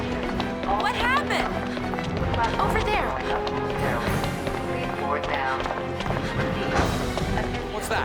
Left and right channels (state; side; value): identical; both; correlation 1.00